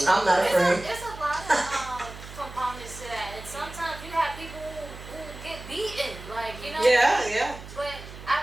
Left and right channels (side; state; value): right; noise; hum, 14 dB below the sound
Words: I'm not afraid. It's a lot of components to that, and sometimes you have people who get beaten, like Yeah. But